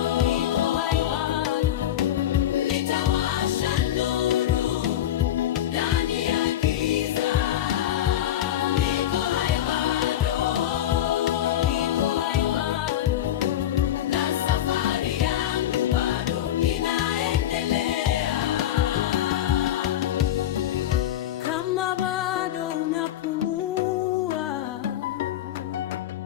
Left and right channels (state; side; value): quieter; right; 12.0 dB